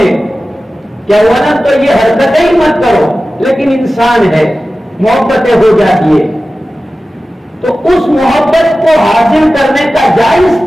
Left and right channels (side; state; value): both; normal; correlation 0.95